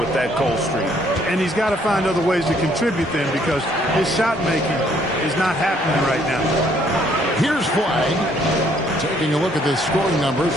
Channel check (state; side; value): normal; both; correlation 0.65